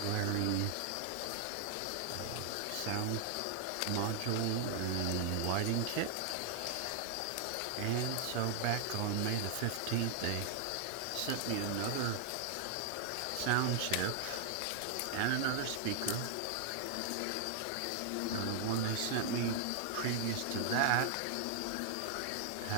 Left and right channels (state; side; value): different; both; correlation 0.00